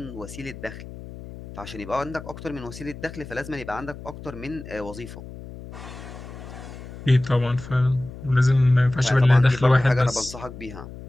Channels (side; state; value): left; noise; hum, 13 dB below the sound